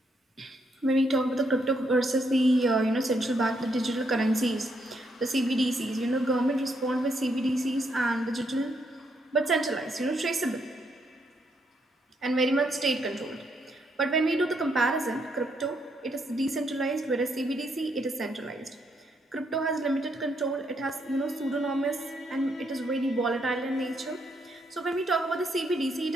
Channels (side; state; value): both; normal; correlation 0.76